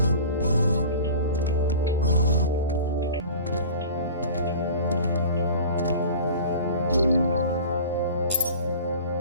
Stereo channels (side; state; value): both; inverted; correlation -0.39